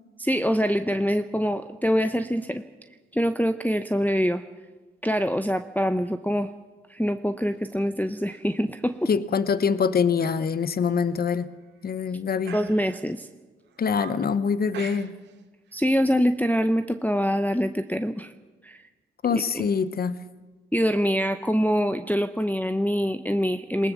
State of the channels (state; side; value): normal; both; correlation 0.81